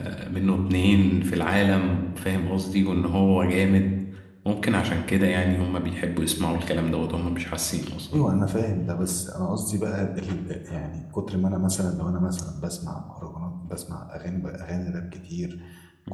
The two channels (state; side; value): identical; both; correlation 1.00